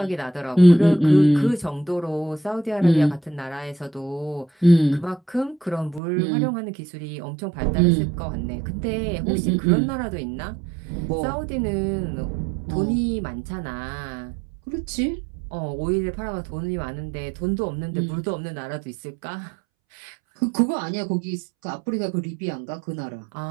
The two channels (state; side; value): drops out; left; at 6.0 s